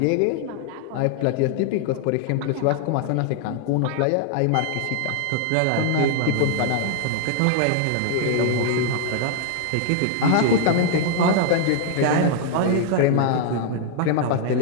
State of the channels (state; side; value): different; both; correlation 0.00